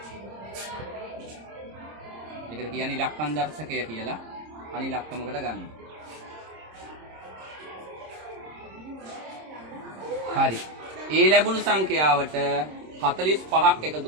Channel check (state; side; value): late; left; 26 ms